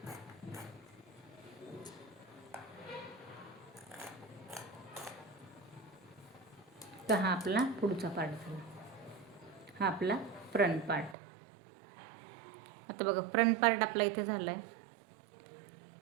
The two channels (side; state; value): left; drops out; at 11.2 s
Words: तर हा आपला पुढचा पार्ट झाला, हा आपला फ्रंट पार्ट. आता बघा फ्रंट पार्ट आपला इथे झाला आहे.